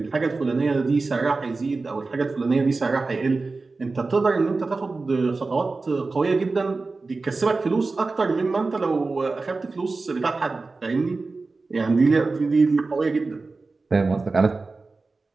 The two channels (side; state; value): left; quieter; 3.8 dB